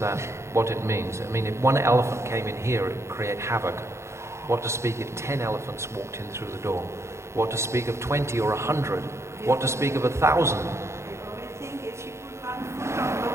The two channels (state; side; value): late; left; 0.13 ms